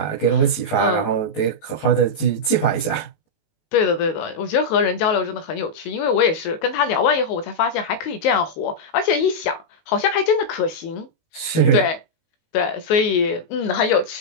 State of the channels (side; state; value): right; late; 19 ms